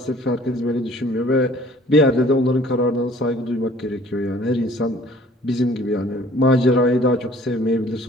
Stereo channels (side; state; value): both; normal; correlation 0.54